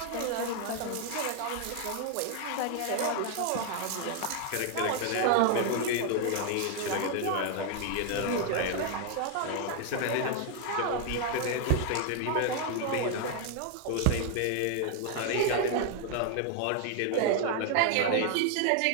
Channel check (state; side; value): different; both; correlation 0.00